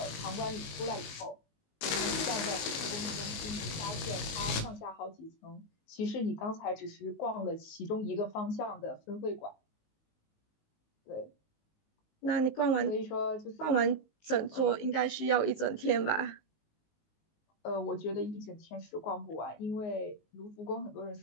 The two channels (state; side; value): late; right; 19 ms